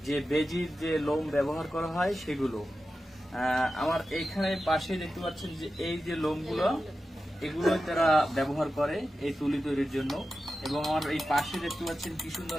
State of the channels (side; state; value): both; normal; correlation 0.92